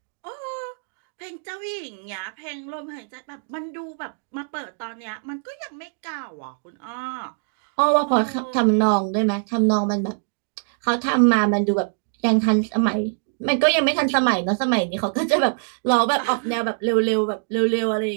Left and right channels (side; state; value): left; silent; digital silence